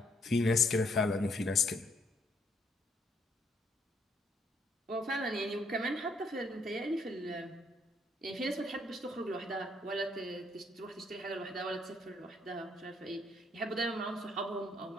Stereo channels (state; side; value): normal; both; correlation 0.69